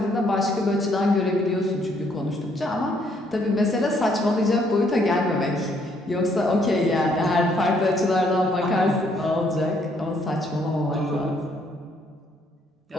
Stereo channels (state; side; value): normal; both; correlation 0.69